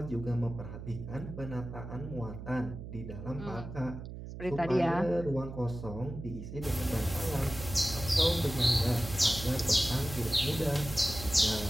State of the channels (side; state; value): right; noise; hum, 10 dB below the sound